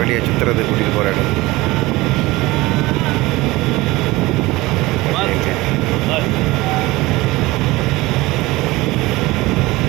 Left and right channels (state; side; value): quieter; left; 20.3 dB